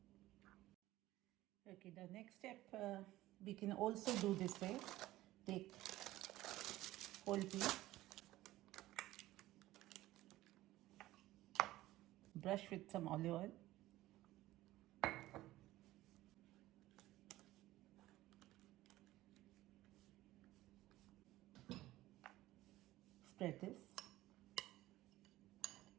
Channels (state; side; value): quieter; left; 16.4 dB